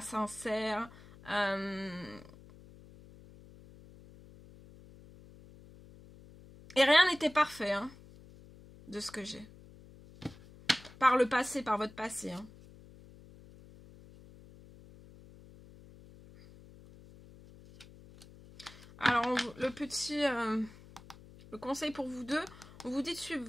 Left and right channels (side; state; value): left; noise; hum, 21 dB below the sound